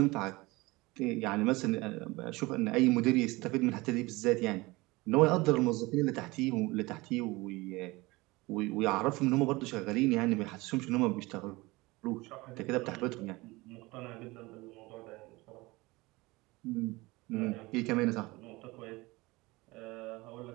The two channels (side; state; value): left; quieter; 22.2 dB